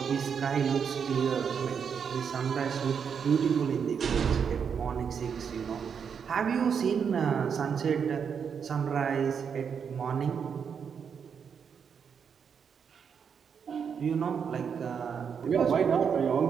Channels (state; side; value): quieter; left; 6.9 dB